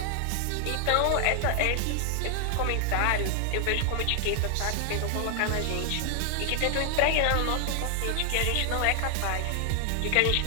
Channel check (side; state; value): both; different; correlation 0.00